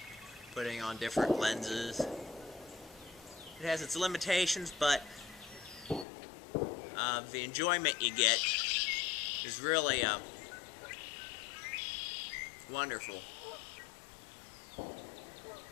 putting on different lenses. It has its limitations, but the enjoyment you get is really wonderful.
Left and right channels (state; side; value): drops out; right; at 6.1 s